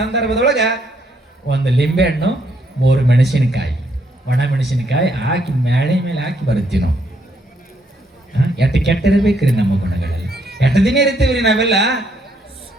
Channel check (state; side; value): normal; both; correlation 0.72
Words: 1 ಲಿಂಬೆಹಣ್ಣು, 3 ಮೆಣಸಿನಕಾಯಿ, ಒಣ ಮೆಣಸಿನಕಾಯಿ ಹಾಕಿ ಮ್ಯಾಳೆ ಮೇಲೆ ಹಾಕಿ ಬರುತ್ತೀವಿ ನಾವು. ಎಟ್ಟು ಕೆಟ್ಟಿರ್ಬೇಕ್ರಿ ನಮ್ಮ ಗುಣಗಳಲ್ಲಿ. 8 ದಿನ ಇರ್ತೀವ್ರಿ ನಾವೆಲ್ಲ.